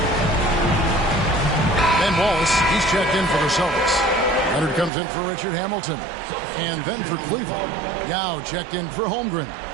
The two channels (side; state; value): left; drops out; at 4.9 s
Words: Ben Wallace, he's checked in for the Celtics. Leonard comes in for Richard Hamilton. And then for Cleveland, Yao checked in for Holmgren.